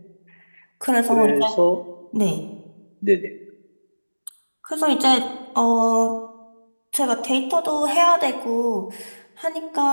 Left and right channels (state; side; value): inverted; both; correlation -1.00